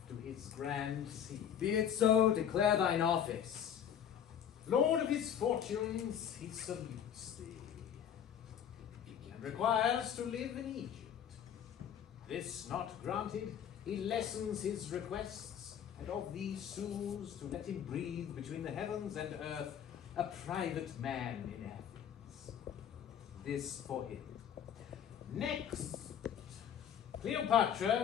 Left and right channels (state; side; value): quieter; right; 9.0 dB